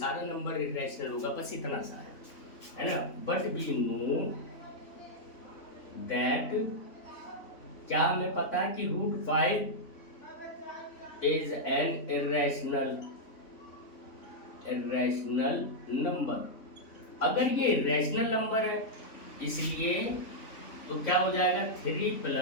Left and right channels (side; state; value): right; late; 3.5 ms